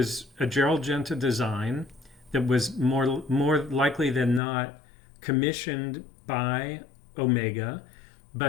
a Gerald Genta design that was more likely than not commissioned by Omega,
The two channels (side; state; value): right; drops out; at 4.4 s